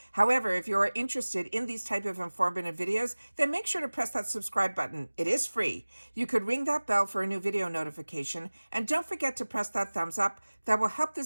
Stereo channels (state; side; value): inverted; both; correlation -1.00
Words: However, if you're interested in these type of informative videos, then make sure to press that subscribe button. It is free. You could ring that bell for a new video notification, and don't forget to press that thumbs up. That will help